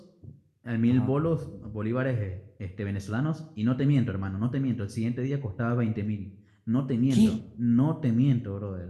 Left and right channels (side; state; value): both; identical; correlation 1.00